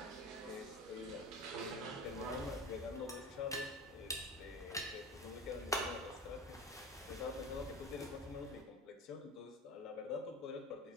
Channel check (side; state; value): both; normal; correlation 0.32